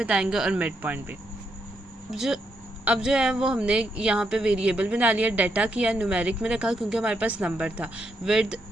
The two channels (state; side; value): normal; both; correlation 0.79